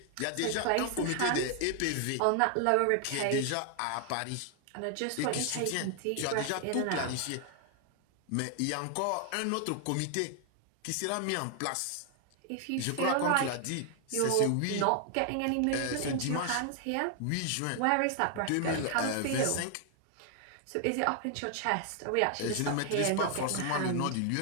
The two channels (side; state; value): both; different; correlation 0.00